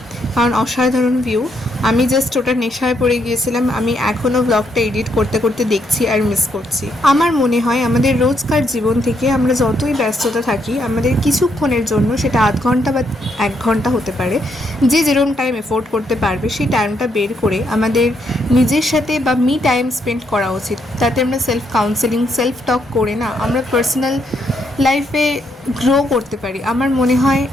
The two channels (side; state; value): both; normal; correlation 0.76